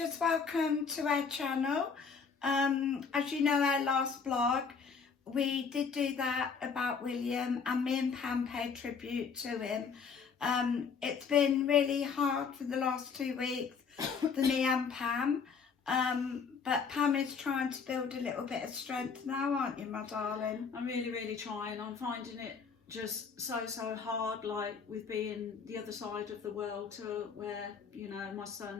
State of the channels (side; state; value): right; quieter; 5.7 dB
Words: welcome to our channel. As you know, our last vlog, we did do that about William, and me and Pam paid tribute to him. It's been really hard for the last 2 weeks for me and Pam, but Pam is trying to build a little bit of strength now, aren't you, my darling? I'm really trying. I'm finding it just so hard, like with being the other side of the world to where, you know, my